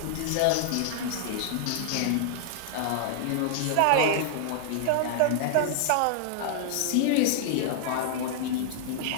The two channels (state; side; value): different; both; correlation -0.01